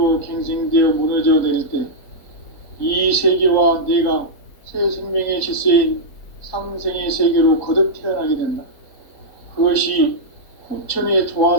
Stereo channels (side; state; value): right; late; 4.3 ms